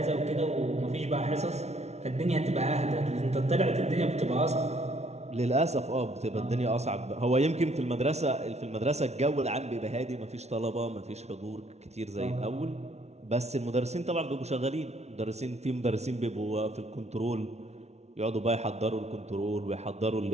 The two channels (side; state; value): left; late; 0.31 ms